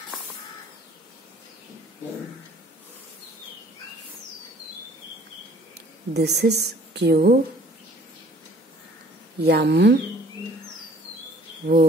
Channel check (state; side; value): normal; both; correlation 0.54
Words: This is Q, M,